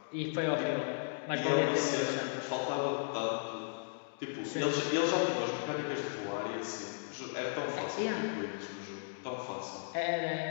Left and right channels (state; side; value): silent; right; digital silence